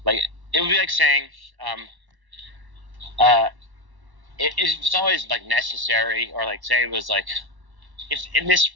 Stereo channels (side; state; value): left; late; 1.1 ms